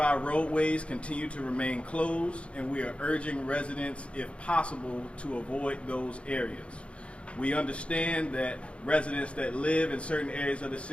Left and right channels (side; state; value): right; late; 0.060 ms